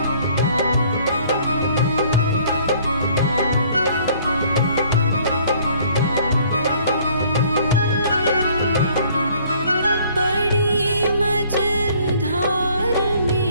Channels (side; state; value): both; inverted; correlation -0.58